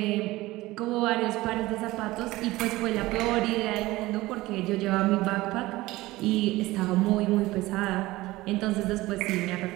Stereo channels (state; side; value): quieter; left; 18.8 dB